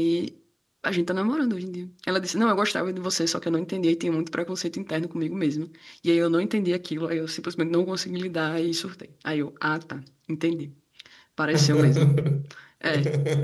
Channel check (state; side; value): identical; both; correlation 1.00